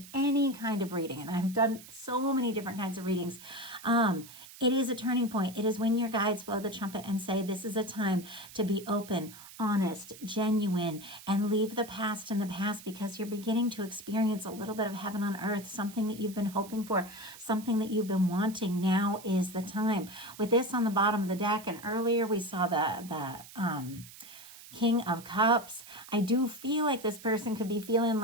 any kind of reading, and I've done so many different kinds of readings, it is a turning point. It is when your guides blow the trumpet and say, this is a time to be open, honest, genuine, and leave the past in the past, because you're beginning to experience a little bit of heaven on earth, something that you've been hoping for, something that you've been wanting. Now is the time. With this on the bottom of the deck, and earlier we saw the King of Cups, I do feel like this person could be feeling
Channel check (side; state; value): right; noise; hiss, 17 dB below the sound